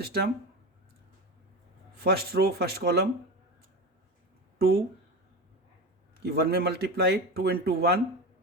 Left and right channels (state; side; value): normal; both; correlation 0.24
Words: first row first column 2 की 1 में multiply, 2 into 1